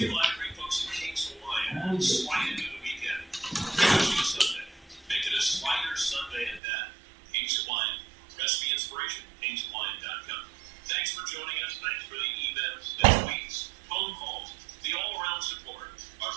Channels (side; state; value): left; drops out; at 6.6 s